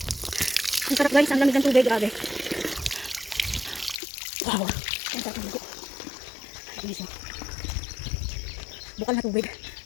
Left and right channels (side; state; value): right; drops out; at 4.0 s